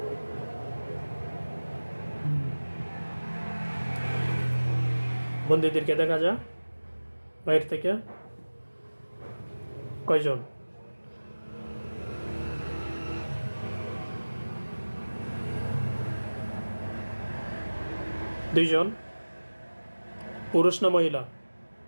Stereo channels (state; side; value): inverted; both; correlation -1.00